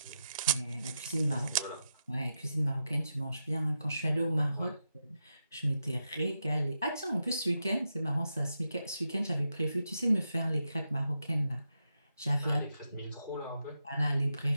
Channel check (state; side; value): inverted; both; correlation -0.86